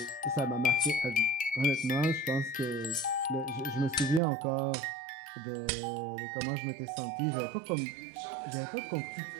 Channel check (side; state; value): left; drops out; at 4.2 s